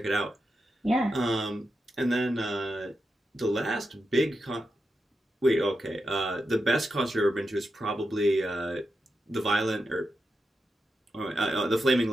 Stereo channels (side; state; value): both; normal; correlation 0.88